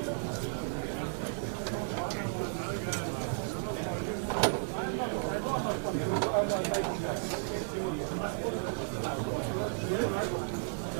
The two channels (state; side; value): silent; left; 55 dB below the other